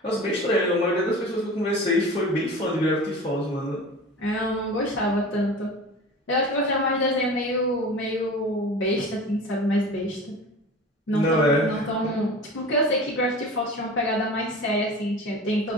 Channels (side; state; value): both; normal; correlation 0.36